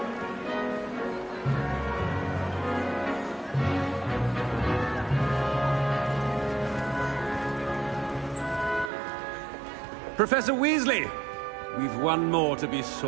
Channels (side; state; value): left; drops out; at 8.9 s